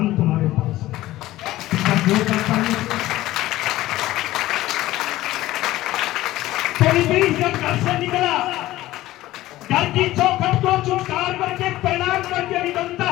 तुम्हारे पास हैं। जब घर से निकला, घर की चौखट को चुटकार करके प्रणाम करके निकलता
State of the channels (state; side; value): quieter; right; 16.1 dB